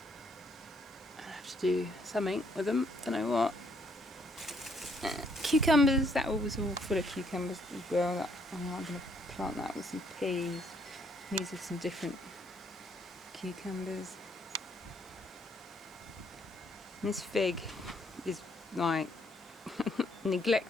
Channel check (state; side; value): normal; both; correlation 0.69